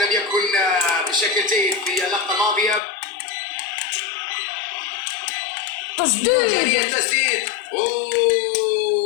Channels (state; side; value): drops out; right; at 2.8 s